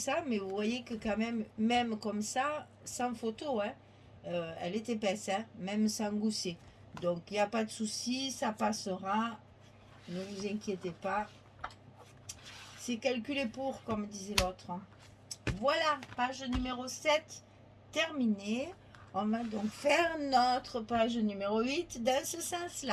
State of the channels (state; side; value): identical; both; correlation 1.00